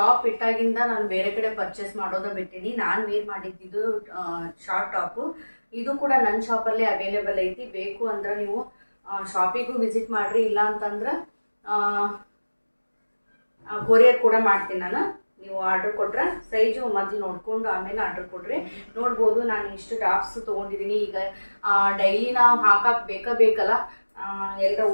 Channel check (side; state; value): both; inverted; correlation -1.00